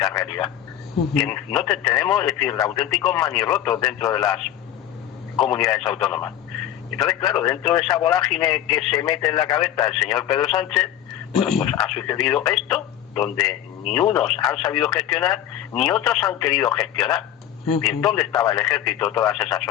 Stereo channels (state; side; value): quieter; right; 11.3 dB